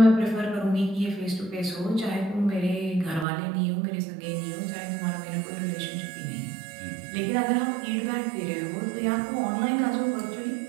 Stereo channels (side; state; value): left; drops out; at 3.2 s